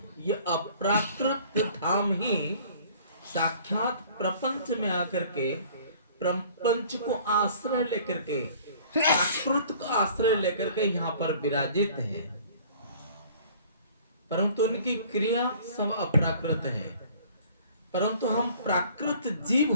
ये अप्राकृत धाम ही साक्षात प्रपंच में आकर के प्रपंच को आश्रय लेकर के, प्राकृत को आश्रय लेकर के यहाँ पर विराजित है, परंतु उनकी क्रिया सब अप्राकृत है। परंतु हम प्राकृत जीव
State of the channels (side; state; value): both; inverted; correlation -0.51